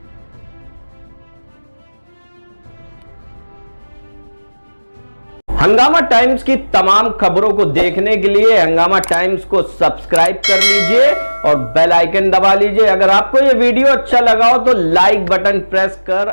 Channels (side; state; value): both; inverted; correlation -1.00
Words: हंगामा टाइम्स की तमाम खबरों को देखने के लिए हंगामा टाइम्स को सब्सक्राइब कर लीजिए और बेल आइकन दबा लीजिए। अगर आपको यह वीडियो अच्छा लगा हो तो लाइक बटन प्रेस कर